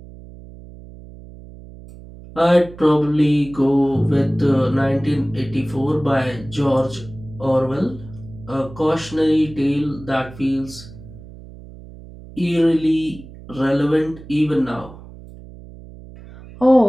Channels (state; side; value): noise; right; hum, 17 dB below the sound